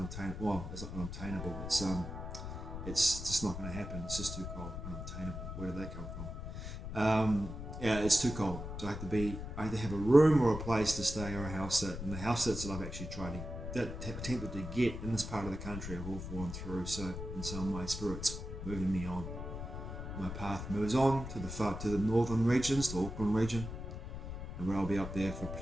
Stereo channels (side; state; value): left; noise; rumble, 7 dB below the sound